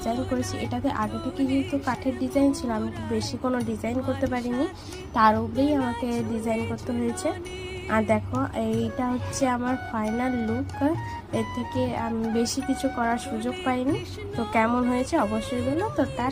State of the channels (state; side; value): identical; both; correlation 1.00